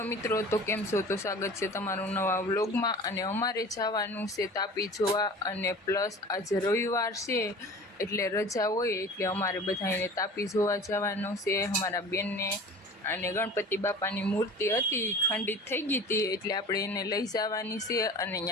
मित्रों, तो केम छो? तो स्वागत है तमारू नवा व्लॉग में। अने अमारे जवानुं छे तापी जोवा अने प्लस आज रविवार छे एटले रजा होय एटले अमारे बधाने तापी जोवा जवानुं छे। अमारा बेन ने अने गणपति बापानी मूर्ति हती खंडित थई गई हती एटले आपणे एने लई जवानी छे अने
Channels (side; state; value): both; normal; correlation 0.40